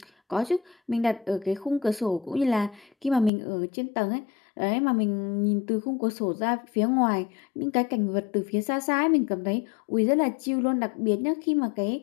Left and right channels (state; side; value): drops out; right; at 3.3 s